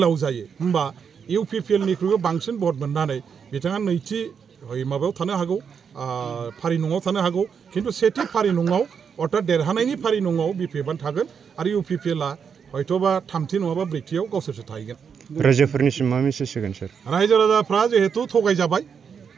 जायो होमबा इउपिपिएलनिख्रुइबो बांसिन भट मोननानै बिथाङा नैथि माबायाव थानो हागौ फारि नङाव थानो हागौ खिन्थु सेथि फारि नङाव अर्थात देरहानायनि फारि नङाव बिपिएफआ थागोन आरो इउपिपिएलआ हयथ'बा 3थि नङाबा 4थियाव गावसोरसो थाहैगोन रायजोफोरनिसिम मा मेसेज होगोन सार रायजो राजाफ्रा जिहेतु थगायजाबाय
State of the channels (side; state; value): left; quieter; 6.8 dB